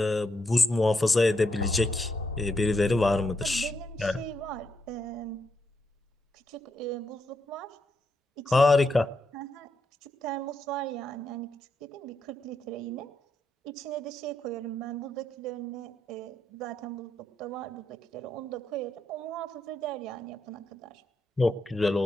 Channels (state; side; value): normal; both; correlation 0.80